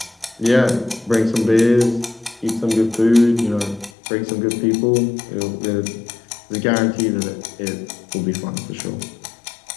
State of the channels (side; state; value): right; drops out; at 3.9 s